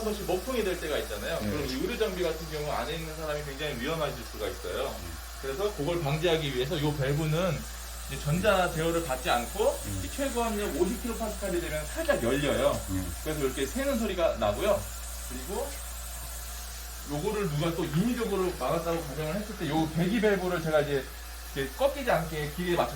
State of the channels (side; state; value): both; identical; correlation 1.00